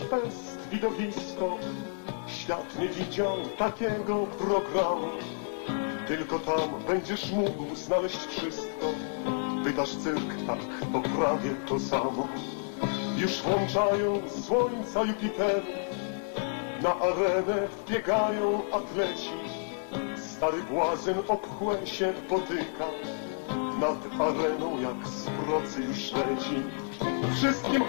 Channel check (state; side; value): silent; right; digital silence